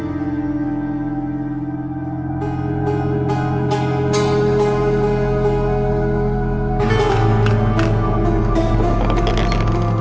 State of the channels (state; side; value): identical; both; correlation 1.00